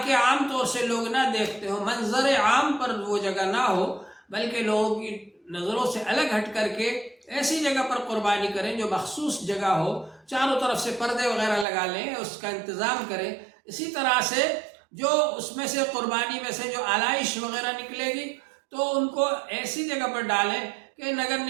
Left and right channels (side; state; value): left; drops out; at 11.7 s